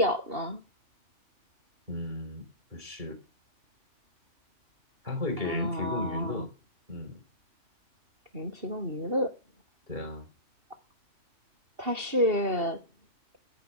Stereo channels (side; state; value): left; late; 2.7 ms